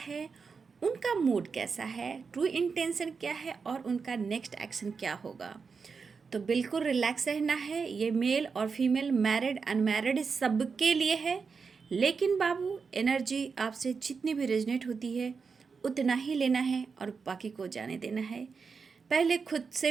उनका मूड कैसा है, ट्रू इंटेंशन क्या है और उनका नेक्स्ट एक्शन क्या होगा। तो बिल्कुल रिलैक्स रहना है। ये मेल और फीमेल, मैरिड अनमैरिड सबके लिए है। लेकिन बाबू, एनर्जी आपसे जितनी भी रेजनेट होती है उतना ही लेना है और बाकी को जाने देना है। पहले खुद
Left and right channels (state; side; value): quieter; left; 5.3 dB